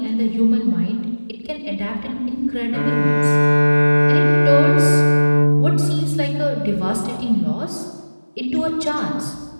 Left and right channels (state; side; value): inverted; both; correlation -1.00